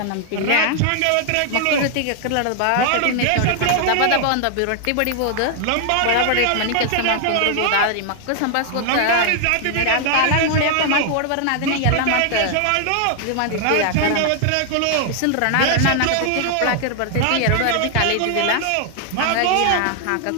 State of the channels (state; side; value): different; both; correlation 0.00